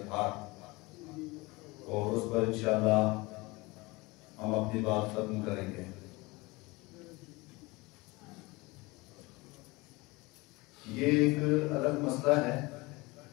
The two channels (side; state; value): right; quieter; 23.4 dB